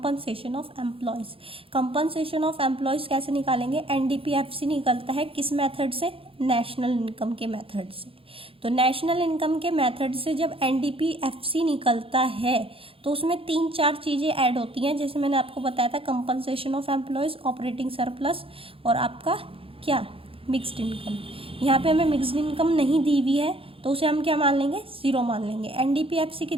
of employees. Compensation of employees कैसे निकालेंगे, NDPFC निकलता है किस मेथड से, नेशनल इनकम के मेथड से। तो नेशनल इनकम के मेथड से जब NDPFC निकलता है तो उसमें 3-4 चीज़ें ऐड होती हैं, जैसे मैंने आपको बताया था compensation of employees, operating surplus और आपका क्या मिक्स्ड इनकम। यहाँ पे हमें मिक्स्ड इनकम नहीं दी हुई है तो उसे हम क्या मान लेंगे, 0 मान लेंगे। NDPFC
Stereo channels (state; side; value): late; left; 0.27 ms